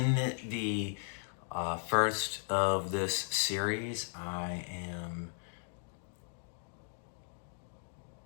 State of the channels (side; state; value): right; silent; digital silence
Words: the first of this series, I